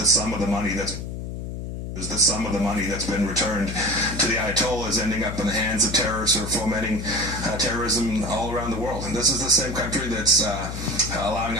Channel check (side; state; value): left; noise; hum, 6 dB below the sound